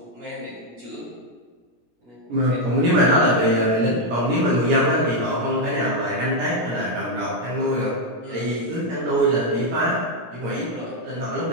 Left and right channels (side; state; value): left; late; 17 ms